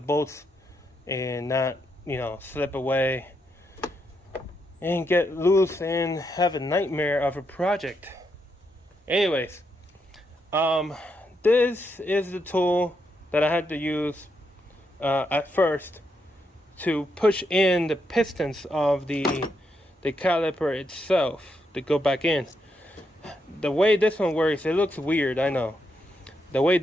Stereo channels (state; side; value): normal; both; correlation 0.80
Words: and not, slip away and get loose and have a nightmare of a project. Anyways, this is the tool that I had to use at first to push in the pistons of the caliper itself to go back in. The way this one works, it looks weird, I know. The way